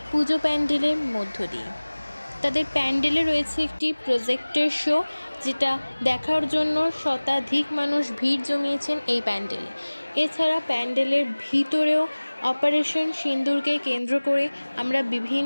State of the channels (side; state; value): both; inverted; correlation -1.00